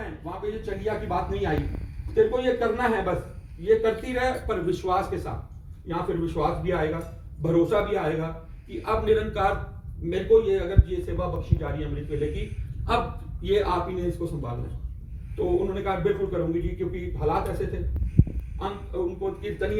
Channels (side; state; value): both; identical; correlation 1.00